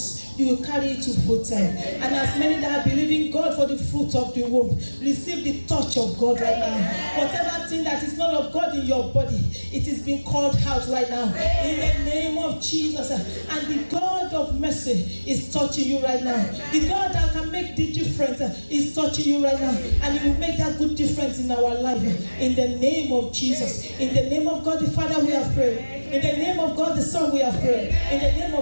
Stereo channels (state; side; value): inverted; both; correlation -1.00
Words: you will carry it to full time. And as many that are believing God for the fruit of the womb, receive the touch of God right now. Whatever thing that is not of God in your body, it is being called out right now. In the name of Jesus. And the God of mercy is touching you right now. The God that can make the difference is touching you right now. And He will make that good difference in our life. In the name of Jesus. In the name of God the Father we have prayed. In the name of God the Son we have prayed. In the name